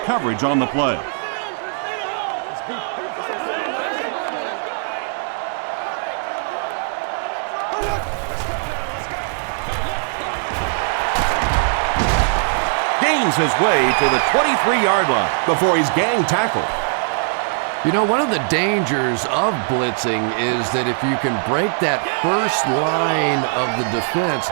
coverage on the play. Gains his way to the 23-yard line before he's gang tackled. You know, one of the dangers of blitzing is that if you can break that first line of the defense,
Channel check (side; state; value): left; silent; 66 dB below the other